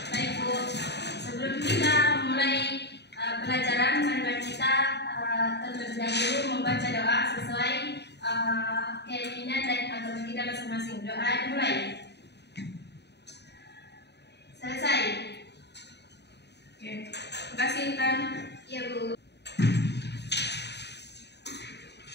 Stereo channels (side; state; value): right; late; 0.49 ms